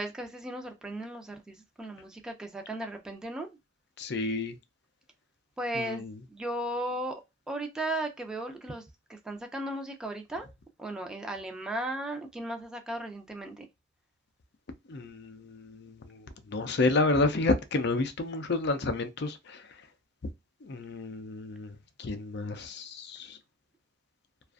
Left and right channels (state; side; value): normal; both; correlation 0.34